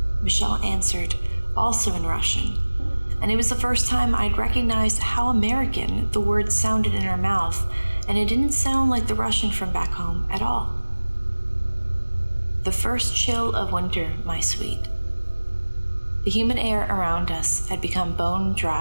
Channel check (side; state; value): both; inverted; correlation -1.00